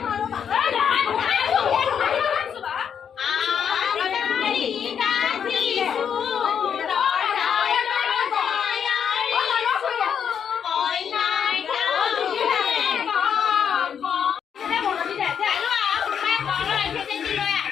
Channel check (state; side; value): quieter; right; 7.8 dB